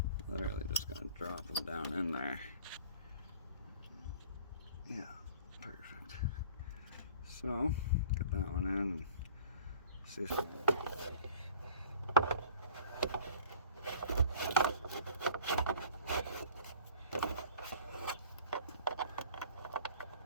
literally just going to drop him down in there. Yeah, perfect. So, get that one in and see if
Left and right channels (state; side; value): inverted; both; correlation -0.48